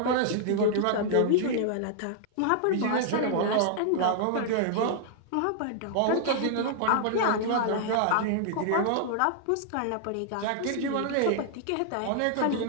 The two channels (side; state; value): both; different; correlation -0.01